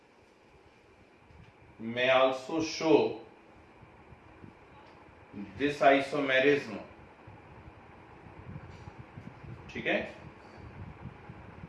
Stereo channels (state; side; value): identical; both; correlation 1.00